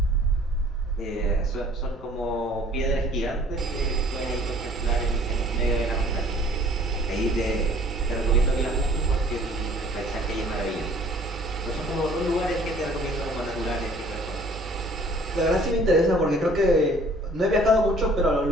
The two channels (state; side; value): normal; both; correlation 0.54